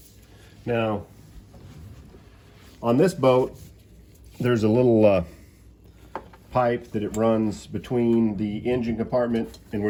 Now, on this boat, there's a little pipe that it runs between the engine compartment and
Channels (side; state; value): both; identical; correlation 1.00